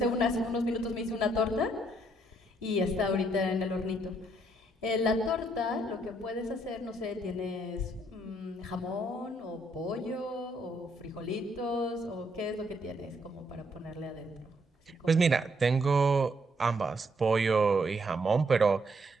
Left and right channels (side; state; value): both; normal; correlation 0.71